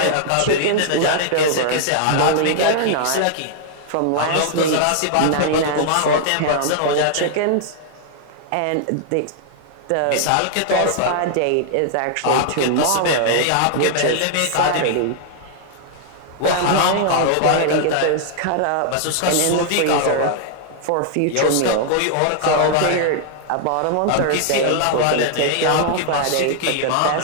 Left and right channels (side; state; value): both; different; correlation -0.01